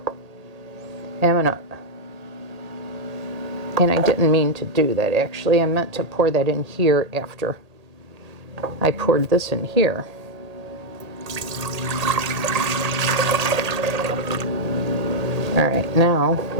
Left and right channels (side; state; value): left; late; 1.8 ms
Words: And I didn't mean to do that actually. I meant to pour that in here after I poured this in here. All right, now